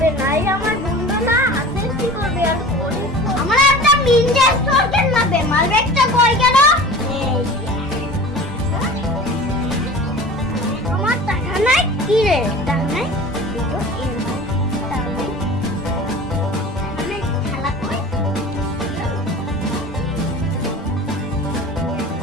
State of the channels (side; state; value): both; normal; correlation 0.39